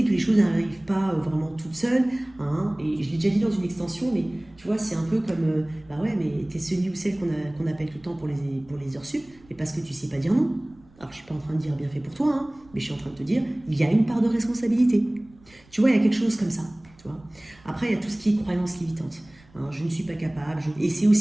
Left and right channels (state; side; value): noise; right; rumble, 27 dB below the sound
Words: que les choses n'arrivent pas vraiment toutes seules. Hein, et je l'ai déjà dit dans une extension, mais tu vois, c'est un peu comme, bah ouais, mais t'es celui ou celle qu'on appelle tout le temps pour les heures sup, mais parce que tu sais pas dire non. Alors je suis pas en train de dire bien fait pour toi, hein, mais je suis en train de te dire, il y a une part de responsabilité. Tu vois, il y a quelque chose comme ça. Tu vois. Après, il y a tout ce qui est croyance limitante. Hein, je ne suis pas capable. Et c'est